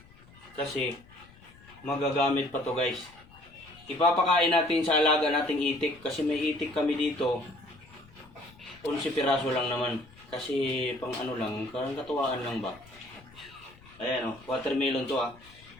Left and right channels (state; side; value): noise; left; rumble, 24 dB below the sound